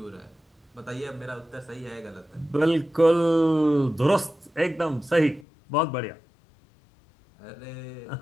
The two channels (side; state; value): right; drops out; at 5.5 s